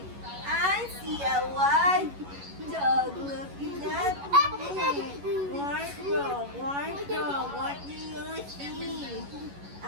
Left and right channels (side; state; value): left; late; 11 ms